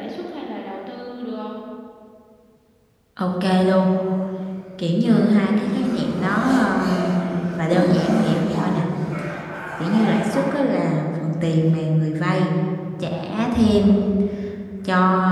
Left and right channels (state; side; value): identical; both; correlation 1.00